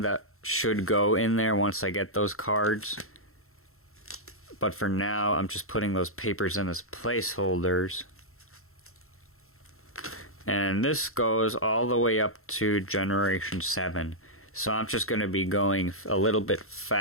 that should go in there once I get those cards. But for now, I'm just putting those papers in as placeholders. And this goes all the way up to Generation 7. So I'm just going to be going a little bit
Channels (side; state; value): right; late; 0.62 ms